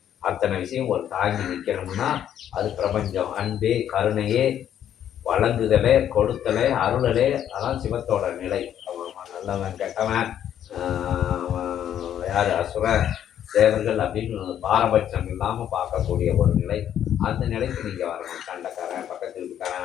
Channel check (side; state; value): right; quieter; 10.2 dB